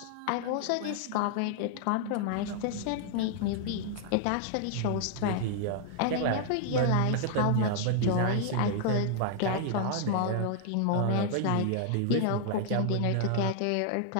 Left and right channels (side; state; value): both; different; correlation 0.00